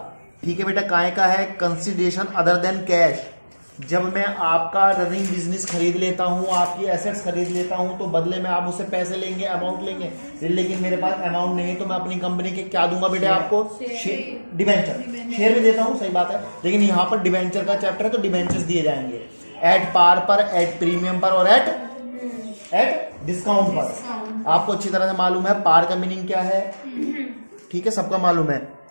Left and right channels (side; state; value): both; inverted; correlation -1.00